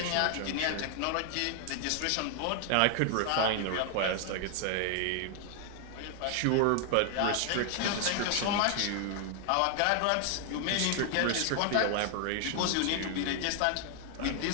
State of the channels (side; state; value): both; different; correlation 0.00